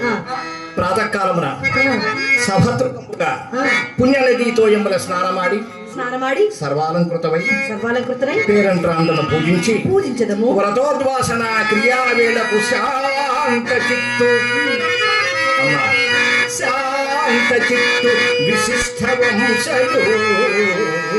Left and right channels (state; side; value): identical; both; correlation 1.00